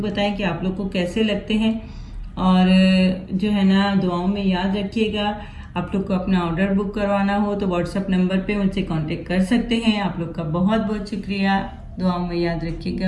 बताएं कि आप लोग को कैसे लगते हैं, और जो है ना दुआओं में याद रखिएगा। आप लोग को अपना ऑर्डर बुक करवाना हो तो व्हाट्सएप नंबर पे मुझसे कांटेक्ट कर सकते हैं। आप लोग का बहुत बहुत शुक्रिया। दुआओं में याद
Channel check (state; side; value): identical; both; correlation 1.00